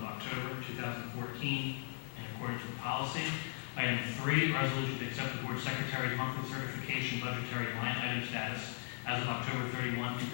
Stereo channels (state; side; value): silent; right; 52 dB below the other